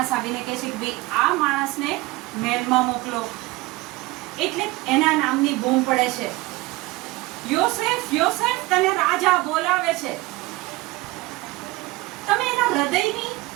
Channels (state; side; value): quieter; left; 20.9 dB